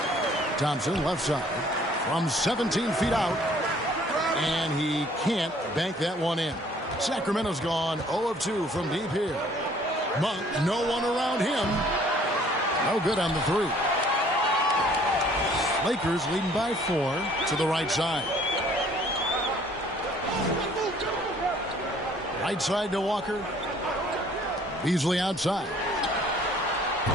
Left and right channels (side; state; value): both; normal; correlation 0.57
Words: Thompson left side from 17 feet out. And he can't bank that one in. Sacramento's gone 0 of 2 from deep here. Monk, no one around him. No good on the 3. Lakers leading by 4 to the right side. Right side to Walker. Beasley outside.